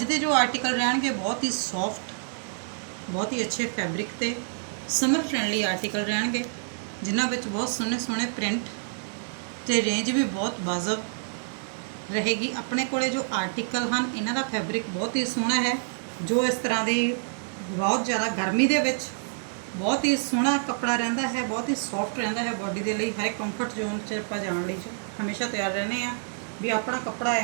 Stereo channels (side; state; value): left; silent; 60 dB below the other